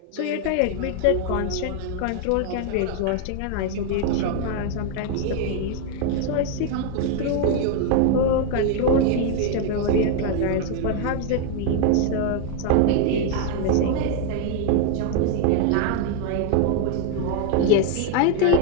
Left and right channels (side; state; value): both; different; correlation 0.01